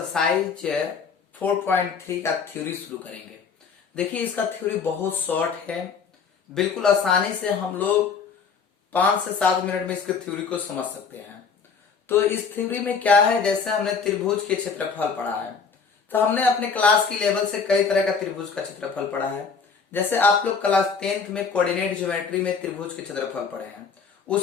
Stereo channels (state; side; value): quieter; right; 5.6 dB